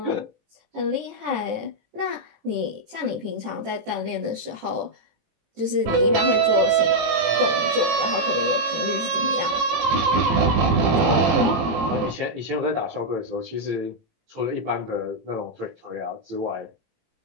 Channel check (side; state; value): left; late; 18 ms